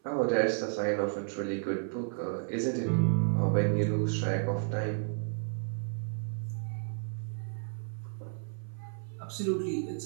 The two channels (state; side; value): silent; left; 56 dB below the other